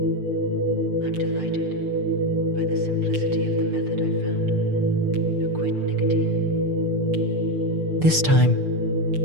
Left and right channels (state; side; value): late; left; 6.7 ms